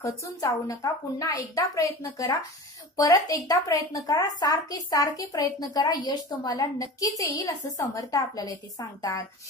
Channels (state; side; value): normal; both; correlation 0.35